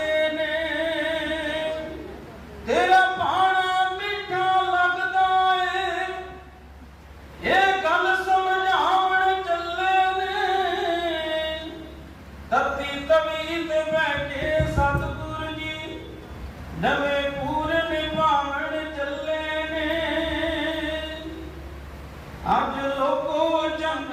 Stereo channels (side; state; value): both; identical; correlation 1.00